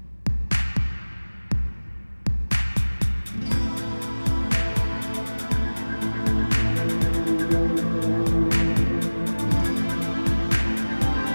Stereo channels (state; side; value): inverted; both; correlation -1.00